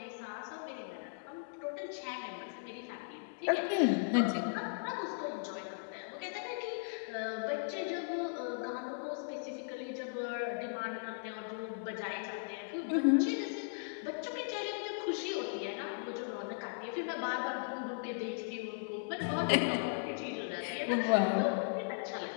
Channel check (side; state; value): right; silent; digital silence